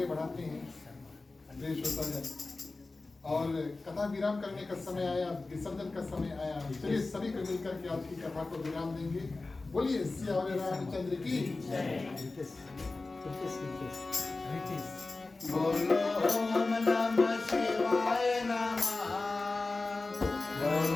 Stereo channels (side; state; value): right; quieter; 3.4 dB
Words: बढ़ाते हैं प्रिय श्रोतागण, और कथा विराम करने का समय आया, विसर्जन का समय आया। चलिए सभी को मिलकर के आज की कथा को विराम देंगे। बोलिए सियावर रामचंद्र की बोलो ओम नमः शिवाय नमः।